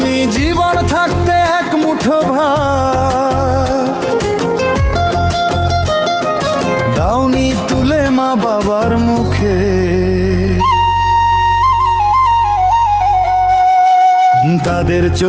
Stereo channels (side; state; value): both; identical; correlation 1.00